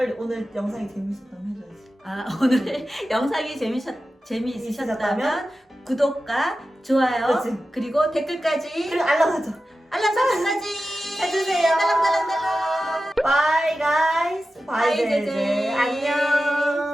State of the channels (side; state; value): both; normal; correlation 0.93